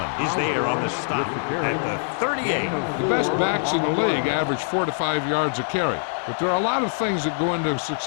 is there on the stop at the 38. The best backs in the league average 4 to 5 yards a carry. But there are a lot of things that go into a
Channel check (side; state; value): right; silent; digital silence